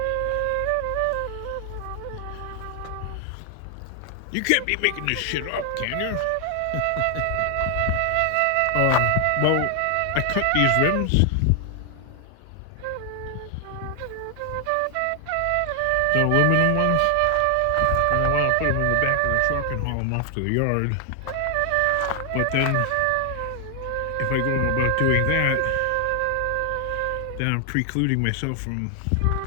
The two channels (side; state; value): both; different; correlation 0.00